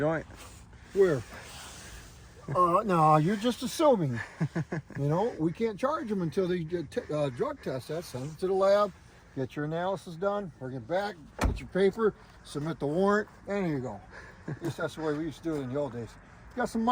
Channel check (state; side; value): identical; both; correlation 1.00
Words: Where? No, you're just assuming. You know, we can't charge them until they drug test that, send it to the lab, get your analysis done, bring it back, get your paper, submit the warrant, and here you go. At least that's the way we used to do it in the old days. Got some